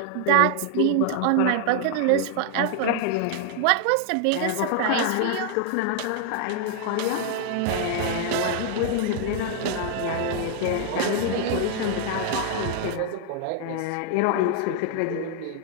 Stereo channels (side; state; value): both; different; correlation 0.00